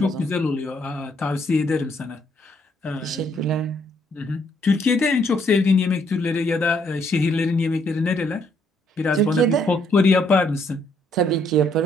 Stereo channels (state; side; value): normal; both; correlation 0.70